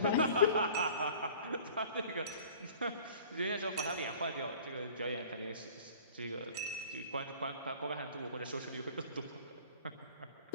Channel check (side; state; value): both; inverted; correlation -0.47